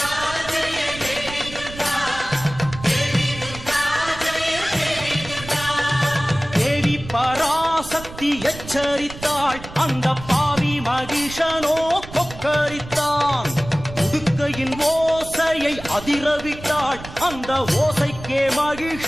தேவி பராசக்தி எச்சரித்தாள். அந்த பாவி மகிஷனோ கொக்கரித்தான். உடுக்கையின் ஓசையை அதிரவிட்டாள். அந்த ஓசைக்கே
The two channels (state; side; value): noise; right; rumble, 14 dB below the sound